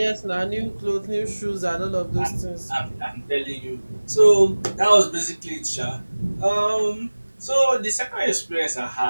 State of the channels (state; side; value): inverted; both; correlation -1.00